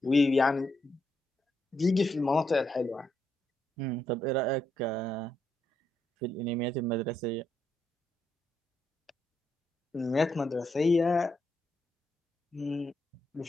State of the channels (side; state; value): both; normal; correlation 0.79